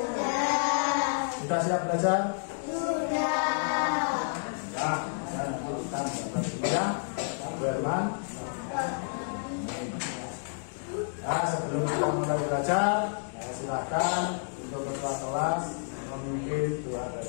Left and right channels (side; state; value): right; silent; digital silence